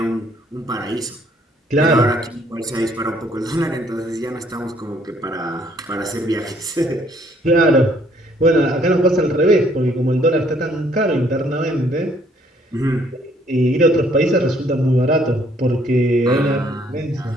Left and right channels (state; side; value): normal; both; correlation 0.64